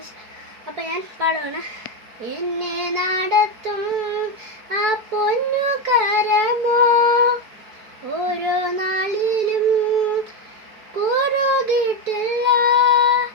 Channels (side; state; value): left; late; 4.6 ms